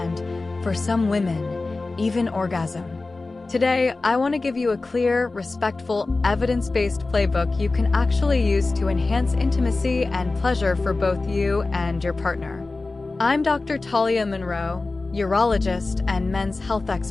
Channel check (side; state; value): right; quieter; 3.4 dB